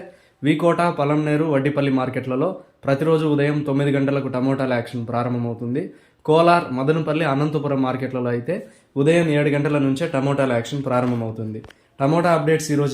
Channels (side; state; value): both; identical; correlation 1.00